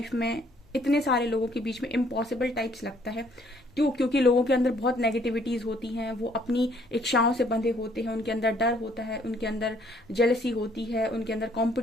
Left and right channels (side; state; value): both; normal; correlation 0.64